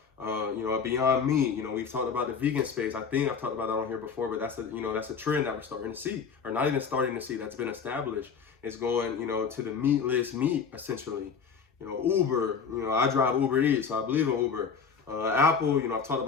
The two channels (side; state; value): right; quieter; 6.0 dB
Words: A Beyond Meat, we've talked about the vegan space. I think I've talked about that on here before, but that's a trend that we're starting to see, or not even starting to see, that's been established. It's going, to the meatless meat, essentially. Uber, I drive Uber Eats, so I believe in Uber. Apple, I've talked